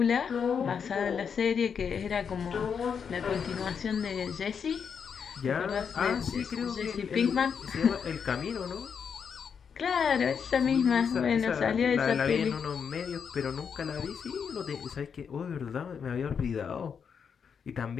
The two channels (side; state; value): right; quieter; 6.7 dB